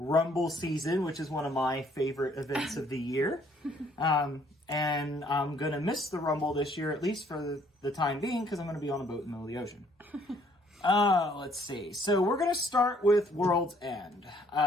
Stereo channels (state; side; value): normal; both; correlation 0.63